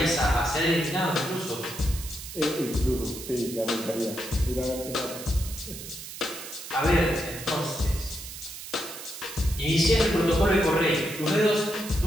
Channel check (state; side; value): noise; right; hiss, 11 dB below the sound